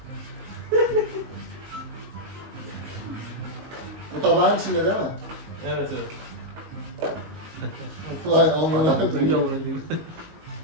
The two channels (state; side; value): late; left; 19 ms